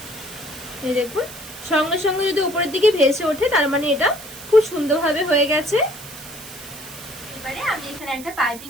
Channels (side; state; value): right; noise; hiss, 15 dB below the sound